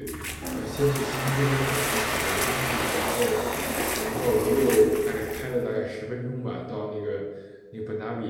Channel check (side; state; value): both; identical; correlation 1.00